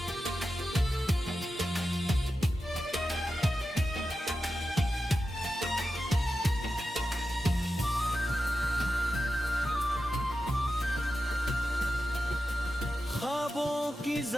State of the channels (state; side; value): normal; both; correlation 0.91